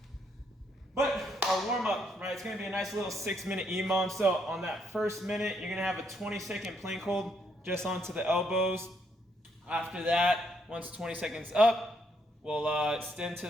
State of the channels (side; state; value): both; normal; correlation 0.73